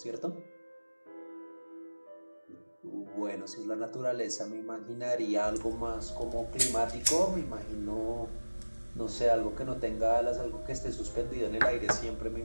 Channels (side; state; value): both; inverted; correlation -1.00